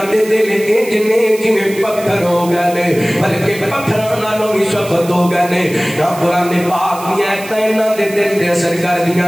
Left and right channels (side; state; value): right; noise; hiss, 15 dB below the sound